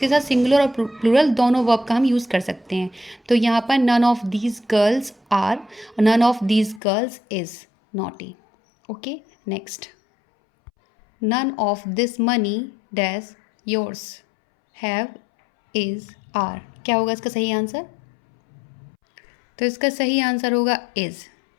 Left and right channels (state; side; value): drops out; right; at 6.8 s